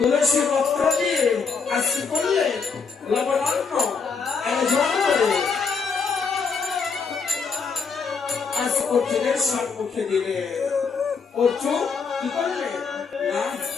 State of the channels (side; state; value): right; quieter; 5.3 dB